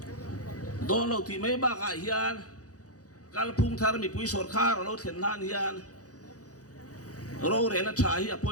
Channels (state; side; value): late; right; 0.67 ms